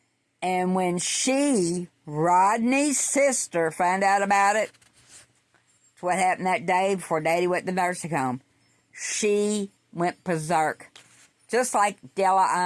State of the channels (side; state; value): both; identical; correlation 1.00